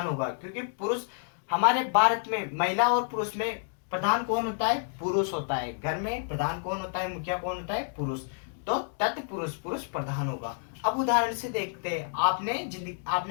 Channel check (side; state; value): right; silent; digital silence